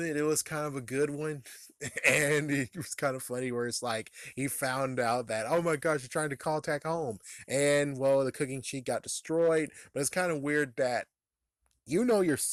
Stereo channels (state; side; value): identical; both; correlation 1.00